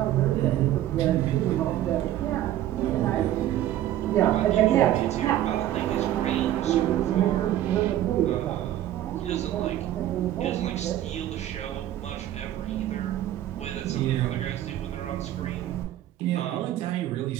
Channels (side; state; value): left; quieter; 12.7 dB